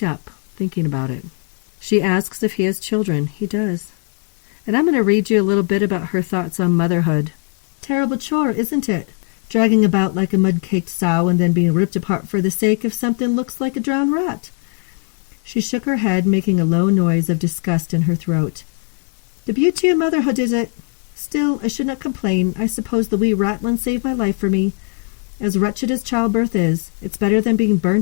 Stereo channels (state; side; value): quieter; right; 38.1 dB